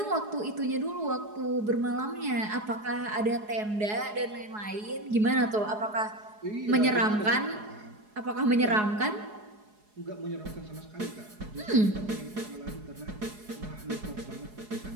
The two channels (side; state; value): left; late; 4.8 ms